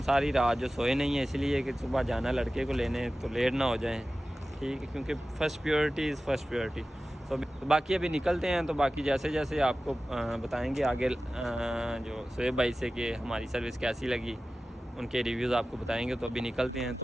सारी रात जो सोए नहीं है, इसलिए कि सुबह जाना लड़के को लेने, तो लेट ना हो जाए। ठीक है, क्योंकि first priority is first priority. तो बाकी अभी निकलते हैं। तो बाकी जैसे जैसे आपको बताएंगे आगे जो सोहेब भाई से कि हमारी सर्विस कैसी लगी, उनके रिव्यूज़ आपको बताएंगे। तो अभी निकलते हैं,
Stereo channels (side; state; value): both; normal; correlation 0.95